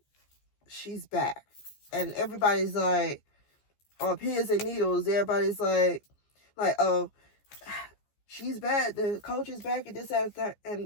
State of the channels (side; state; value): right; late; 14 ms